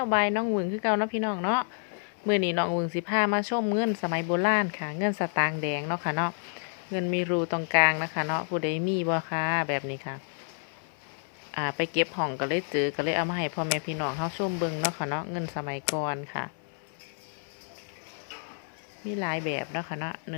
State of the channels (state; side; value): silent; right; 58 dB below the other